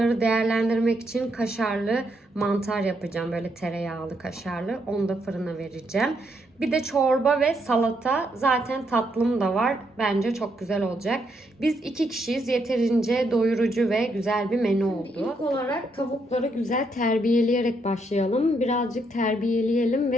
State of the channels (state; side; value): normal; both; correlation 0.76